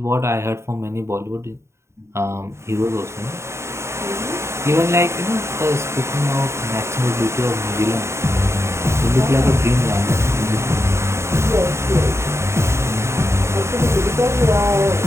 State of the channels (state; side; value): late; left; 0.13 ms